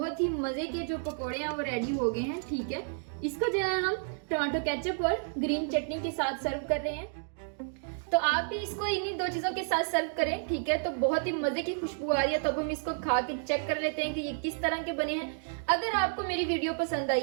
ही मजे के जो पकोड़े हैं वो रेडी हो गए हैं। ठीक है, इसको जो है हम टमाटो केचप और ग्रीन चटनी के साथ सर्व कर रहे हैं। तो आप भी इसको इन्हीं दो चीजों के साथ सर्व करें। ठीक है, तो बहुत ही मजे की खुशबू आ रही है। तो अब हम इसको खा के चेक कर लेते हैं कि ये किस तरह के बने हैं। अगर आपको मेरी वीडियो पसंद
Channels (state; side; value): silent; left; digital silence